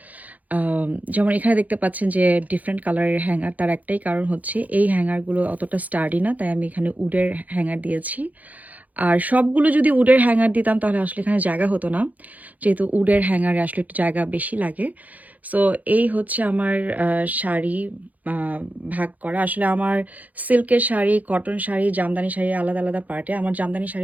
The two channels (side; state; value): left; late; 0.078 ms